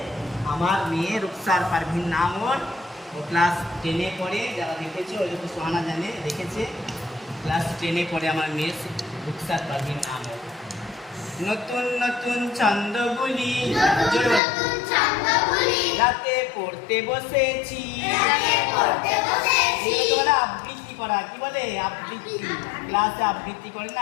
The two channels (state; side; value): drops out; right; at 14.4 s